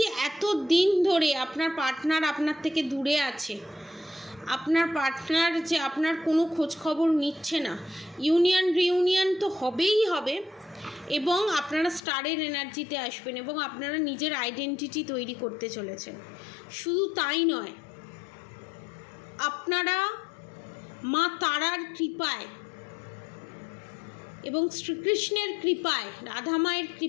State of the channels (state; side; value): drops out; right; at 12.0 s